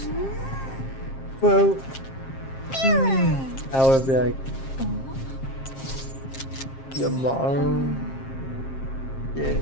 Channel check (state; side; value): late; right; 7.5 ms